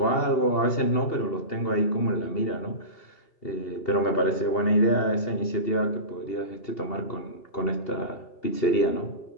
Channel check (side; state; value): right; late; 2.8 ms